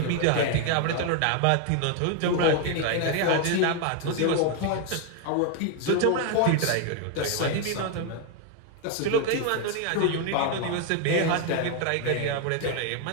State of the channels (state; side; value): different; both; correlation 0.01